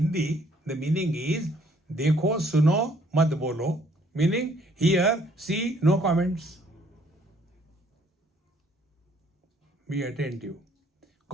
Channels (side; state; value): both; normal; correlation 0.63